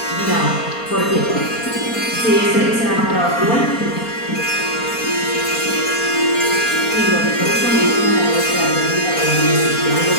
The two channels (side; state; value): right; late; 4.3 ms